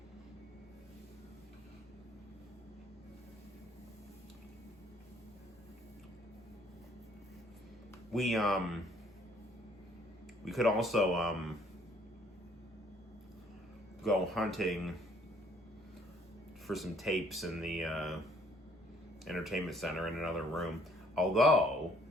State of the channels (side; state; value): both; normal; correlation 0.62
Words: We could also go hunting for some tapes in the entertainment center in another room. Although